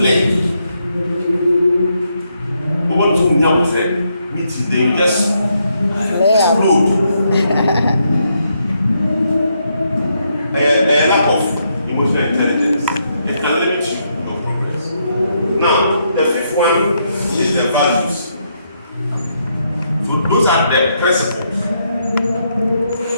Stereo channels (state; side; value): inverted; both; correlation -0.77